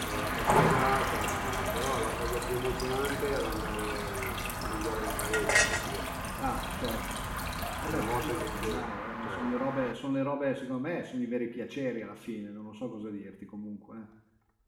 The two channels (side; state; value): both; identical; correlation 1.00